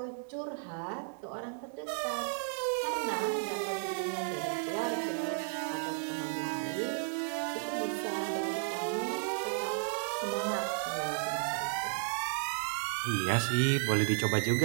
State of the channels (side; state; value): left; silent; 55 dB below the other